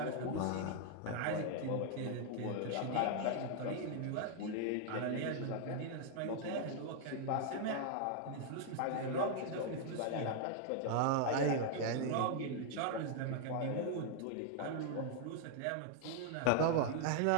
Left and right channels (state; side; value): different; both; correlation 0.00